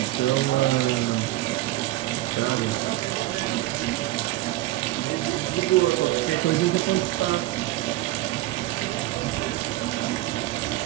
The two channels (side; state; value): left; quieter; 16.7 dB